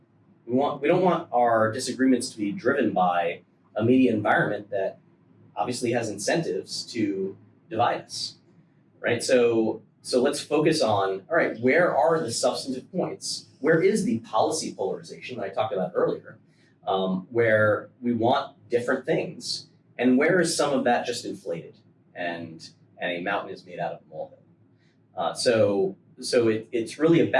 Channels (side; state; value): both; identical; correlation 1.00